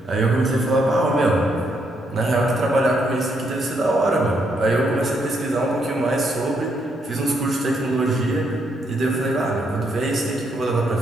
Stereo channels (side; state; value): both; normal; correlation 0.76